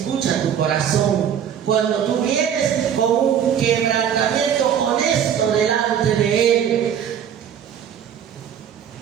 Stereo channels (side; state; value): left; quieter; 8.8 dB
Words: tu corazón. Cuando tú vienes con un quebrantamiento honesto delante de Él,